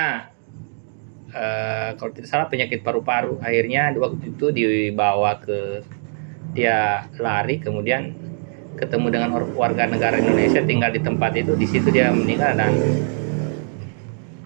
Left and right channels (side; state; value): left; silent; 64 dB below the other